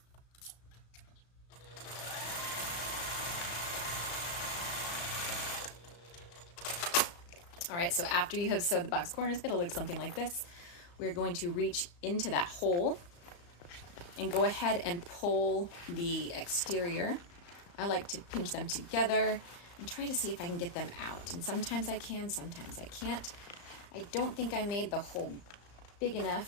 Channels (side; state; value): right; late; 34 ms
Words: All right, so after you have sewed the box corners, it'll look something like this. We're going to reach into that hole and go ahead and pull the exterior. I like to pinch them together and try to see if I can get them out. And sometimes I can, sometimes I can't. I don't think I made the hole big